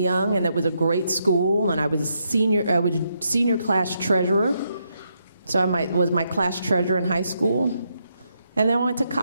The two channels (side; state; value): both; inverted; correlation -0.79